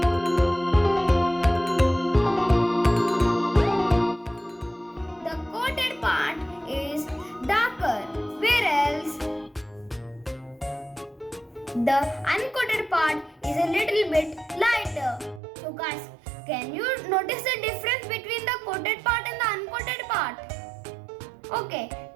The coated part is darker, whereas the uncoated part is a little bit lighter. So guys, can you notice the difference between the coated part and the uncoated part? Okay,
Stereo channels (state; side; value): drops out; left; at 15.4 s